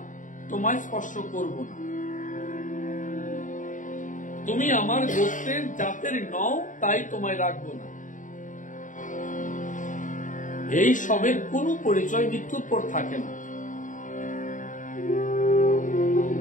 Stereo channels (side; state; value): right; late; 0.37 ms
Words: তোমায় স্পর্শ করব না, তুমি আমার গোত্রের জাতের নও, তাই তোমায় রাখবো না। এই সবের কোন পরিচয় মৃত্যুর পর থাকে না।